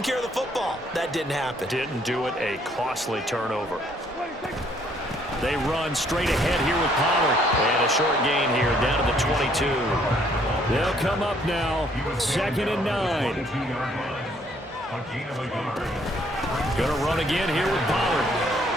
care of the football. That didn't happen. Didn't do it. A costly turnover. They run straight ahead here with Pollard. And a short gain here down to the 22. They'll come up now. 2nd and 9. Going to run again here with Pollard.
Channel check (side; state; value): both; normal; correlation 0.65